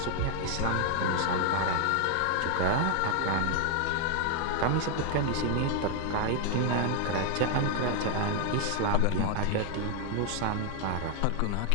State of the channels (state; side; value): different; both; correlation 0.00